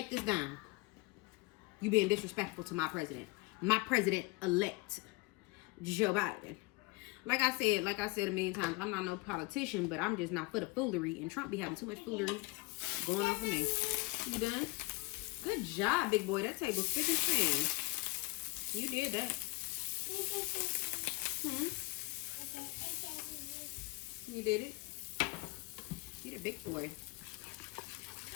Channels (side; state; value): right; quieter; 23.8 dB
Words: this down. You being disrespectful to my president. My president-elect, Joe Biden. Like I said a million times, I'm not no politician, but I'm just not for the foolery. And Trump be having too much foolery going on for me. You done? Good job, big boy. That table's thick and thin. You did that. You did it. You're a big boy.